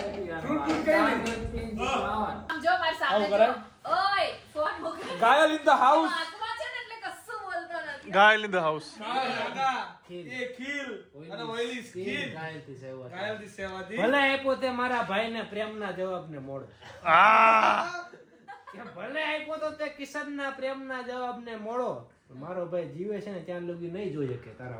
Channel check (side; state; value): both; identical; correlation 1.00